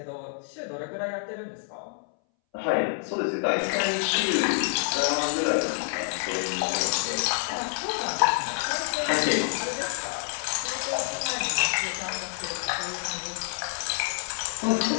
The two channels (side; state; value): right; silent; 60 dB below the other